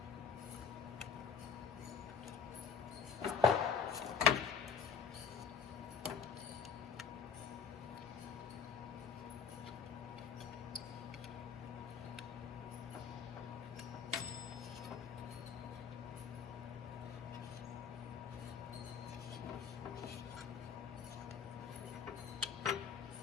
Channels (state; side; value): quieter; right; 6.3 dB